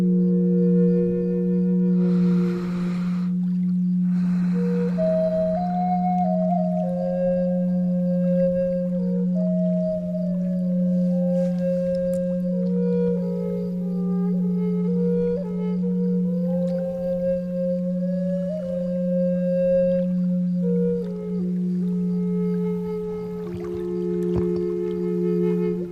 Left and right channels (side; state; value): both; identical; correlation 1.00